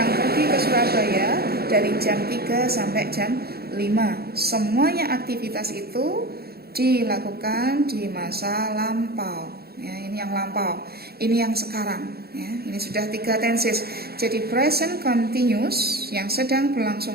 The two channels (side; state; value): left; late; 0.46 ms